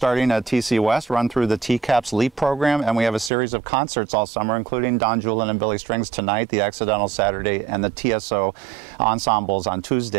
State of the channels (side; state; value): left; drops out; at 3.3 s